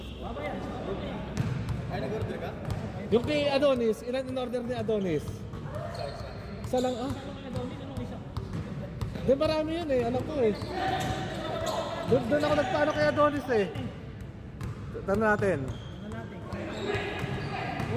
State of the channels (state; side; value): identical; both; correlation 1.00